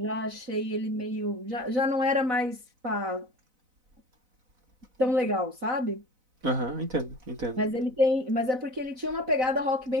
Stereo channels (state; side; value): late; left; 4.0 ms